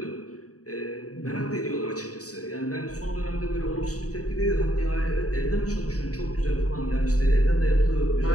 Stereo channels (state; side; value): late; right; 0.66 ms